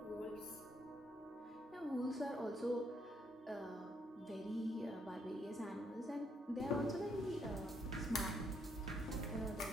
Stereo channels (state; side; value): normal; both; correlation 0.73